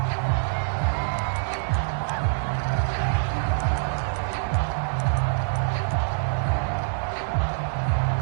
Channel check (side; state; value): left; silent; digital silence